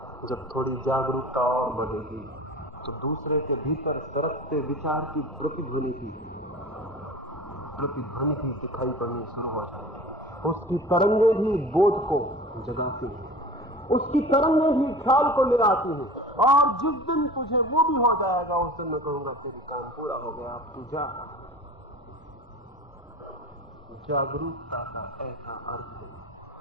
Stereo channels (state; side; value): normal; both; correlation 0.38